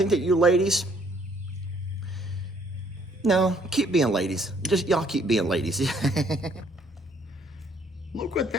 that you ladies, no, keep being ladies. Just y'all keep being ladies. Look what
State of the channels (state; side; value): normal; both; correlation 0.63